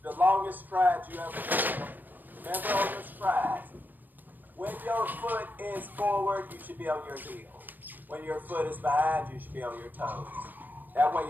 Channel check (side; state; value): left; late; 0.087 ms